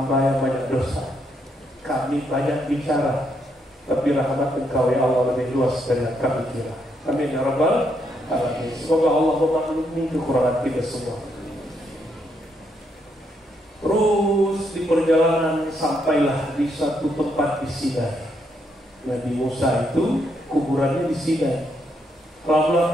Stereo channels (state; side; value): normal; both; correlation 0.76